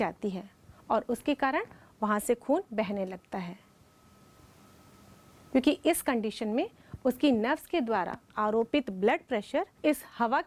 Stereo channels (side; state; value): both; identical; correlation 1.00